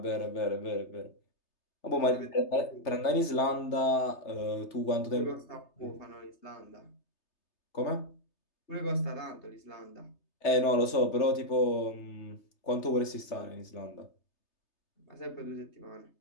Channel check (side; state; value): right; late; 3.3 ms